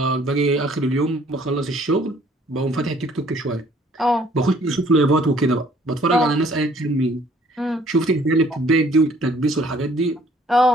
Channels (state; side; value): normal; both; correlation 0.59